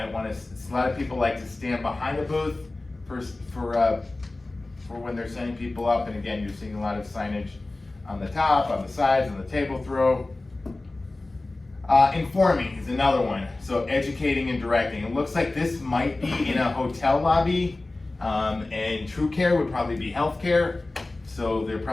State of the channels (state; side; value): quieter; right; 3.0 dB